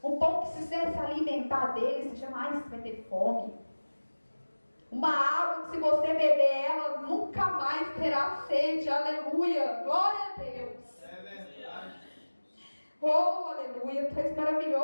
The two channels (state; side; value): inverted; both; correlation -1.00